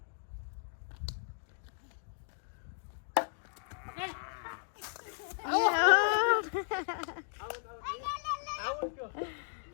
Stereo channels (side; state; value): right; silent; digital silence